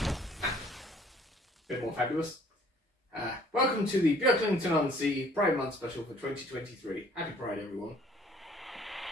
Bit more fabulous. Welcome to the Beaglington-On-Sea Pride Month special for 2023. Happy Pride, everyone.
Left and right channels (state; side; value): normal; both; correlation 0.58